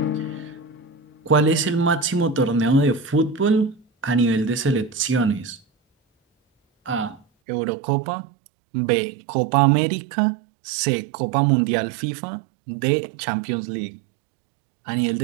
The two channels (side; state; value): left; drops out; at 7.2 s